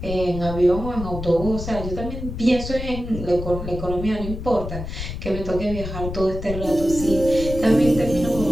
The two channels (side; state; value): left; noise; rumble, 7 dB below the sound